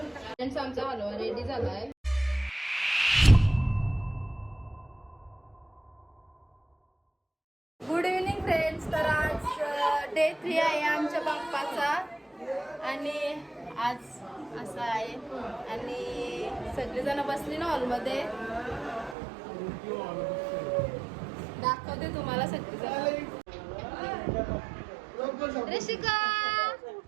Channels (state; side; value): drops out; left; at 19.2 s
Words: आमचा हलवा रेडी झालाय. Good evening friends. तर आज डे 3 आहे आमच्या बाप्पाचा आणि आज असं आहे आणि सगळेजण बसले ना हॉलमध्ये. दाखवते तुम्हाला सगळेजण. ऋषिका